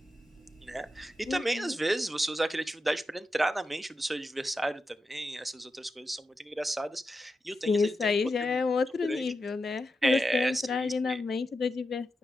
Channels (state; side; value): normal; both; correlation 0.88